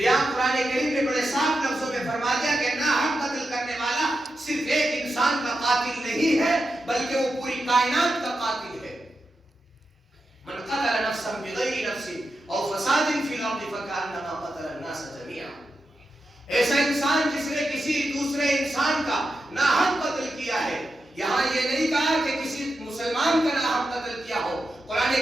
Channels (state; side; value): normal; both; correlation 0.88